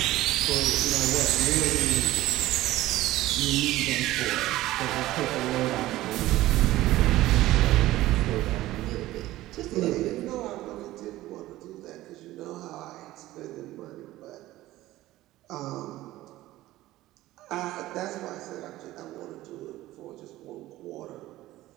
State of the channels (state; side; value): quieter; left; 16.3 dB